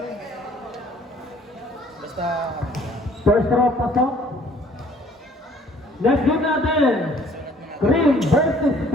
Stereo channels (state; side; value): normal; both; correlation 0.58